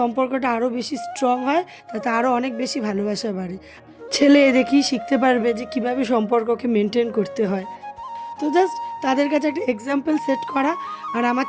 আরও বেশি স্ট্রং হয়, তাতে আরও অনেক বেশি ভালোবাসা বাড়ে। ছেলে দেখেই শিখতে পারবে যে কীভাবে সম্পর্ককে মেনটেন করতে হয়। তো জাস্ট তাদের কাছে একটা এক্সাম্পল সেট করা, আর আমার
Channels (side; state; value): both; identical; correlation 1.00